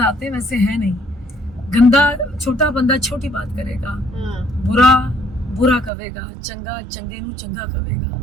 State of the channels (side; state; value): left; drops out; at 5.9 s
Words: आते हैं वैसे है नहीं। गंदा छोटा बंदा छोटी बात करेगा, बुरा बुरा कवेगा, चंगा चंगे नू चंगा